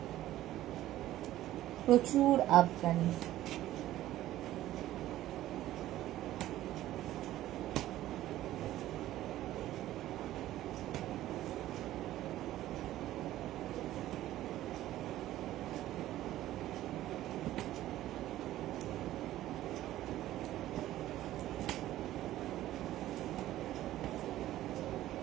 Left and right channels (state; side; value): quieter; left; 14.2 dB